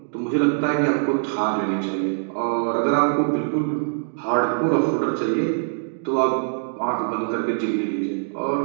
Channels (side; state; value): left; silent; digital silence